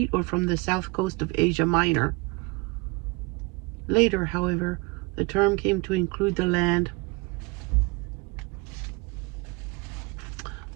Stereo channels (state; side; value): quieter; left; 27.2 dB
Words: or from the south coast of Asia Minor. Later, however, the term came to include the land